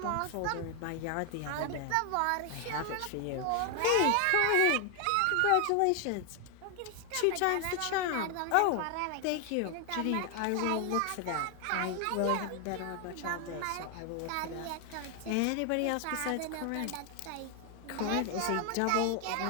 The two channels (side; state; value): both; different; correlation 0.00